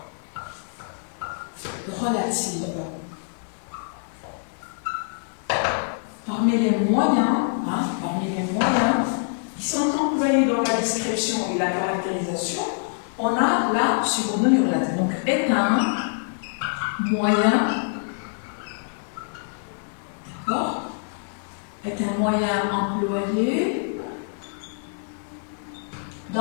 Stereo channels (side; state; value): right; silent; 62 dB below the other